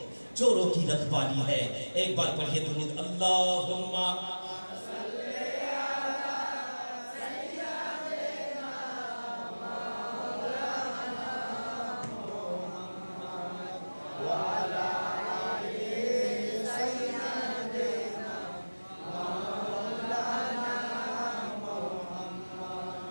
چوروں کی رکھوالی ہے۔ ایک بار پڑھیے درود، اللہم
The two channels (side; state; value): both; inverted; correlation -1.00